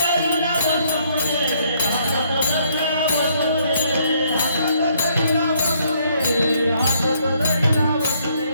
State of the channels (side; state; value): both; inverted; correlation -0.69